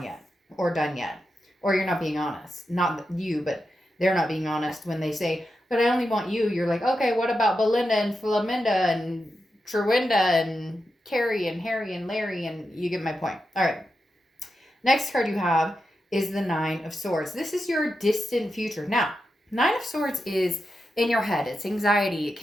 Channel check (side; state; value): both; normal; correlation 0.88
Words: yet, or done yet, or you're not being honest. Not you, but they're not being honest when they say, but I only want you. You're like, okay, what about Belinda and Flaminda and Trewinda and Carrie and Harry and Larry? And you get my point. All right. Next card you have is the Nine of Swords. This is your distant future. Now, Nine of Swords is in your head. It's anxiety. It